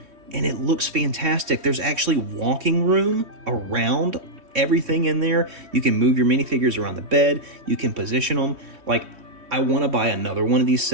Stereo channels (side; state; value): left; late; 3.2 ms